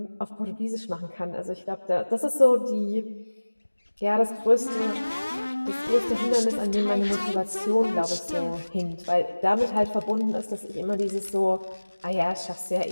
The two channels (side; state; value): both; inverted; correlation -1.00